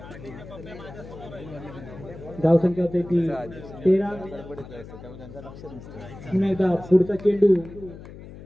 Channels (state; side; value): noise; left; hum, 15 dB below the sound